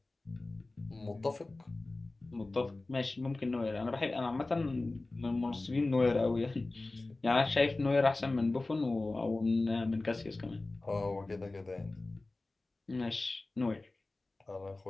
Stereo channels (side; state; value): right; quieter; 3.1 dB